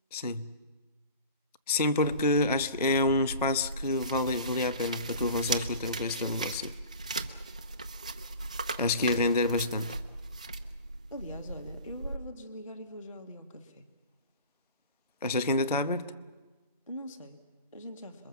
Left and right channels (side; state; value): both; inverted; correlation -0.39